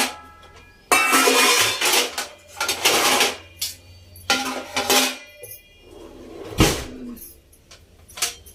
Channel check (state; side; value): identical; both; correlation 1.00